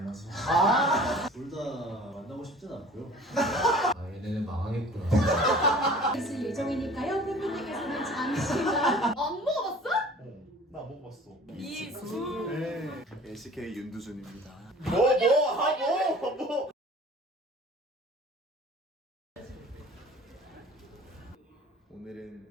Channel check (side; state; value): both; normal; correlation 0.46